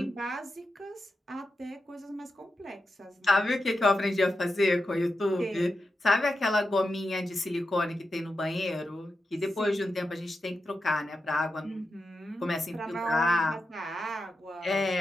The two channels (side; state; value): both; normal; correlation 0.89